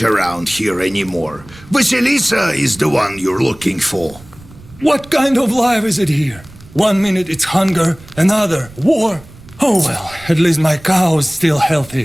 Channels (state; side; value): noise; right; rumble, 22 dB below the sound